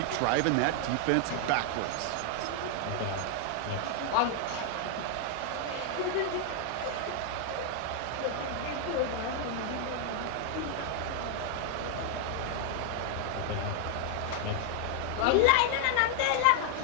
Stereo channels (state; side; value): different; both; correlation 0.00